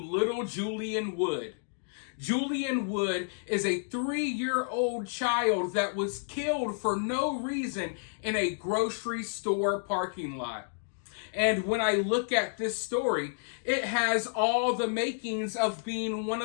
little Julian Wood. Julian Wood is a 3-year-old child that was killed for no reason in a grocery store parking lot. And when I look at this story, it has all the makings of being one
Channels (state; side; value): silent; right; digital silence